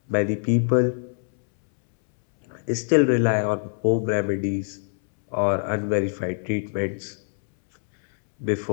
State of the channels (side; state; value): right; silent; 63 dB below the other